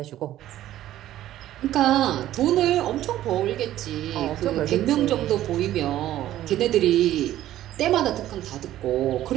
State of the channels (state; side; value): quieter; left; 13.3 dB